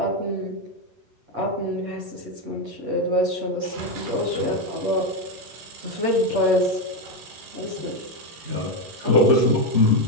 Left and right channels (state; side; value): late; left; 11 ms